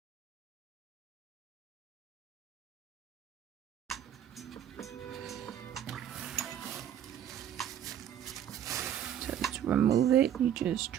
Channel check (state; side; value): quieter; left; 10.0 dB